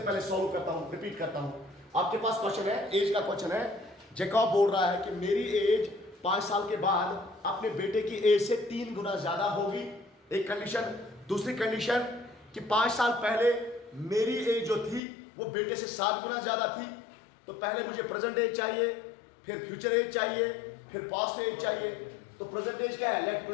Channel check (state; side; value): drops out; right; at 15.0 s